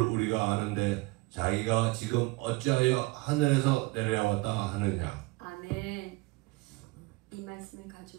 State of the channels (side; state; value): left; quieter; 23.5 dB